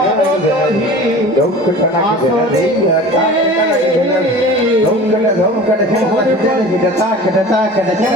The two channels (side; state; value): both; normal; correlation 0.39